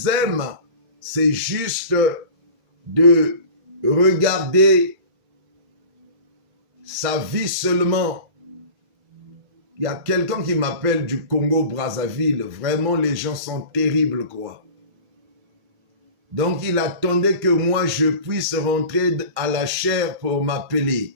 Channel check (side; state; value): left; late; 2.3 ms